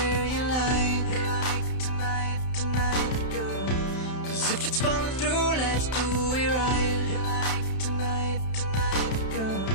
you like. Tonight, tonight, girl. 'Cause if it's falling through, let's do it right. Tonight, tonight, girl.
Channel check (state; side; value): late; right; 31 ms